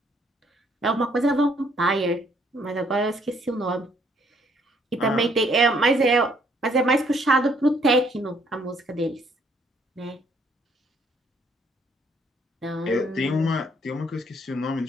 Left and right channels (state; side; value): normal; both; correlation 0.66